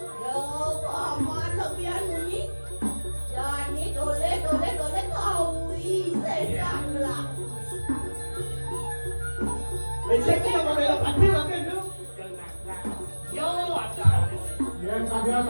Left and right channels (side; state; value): both; inverted; correlation -1.00